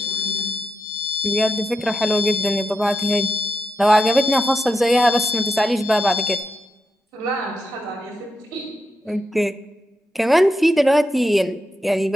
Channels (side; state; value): both; normal; correlation 0.86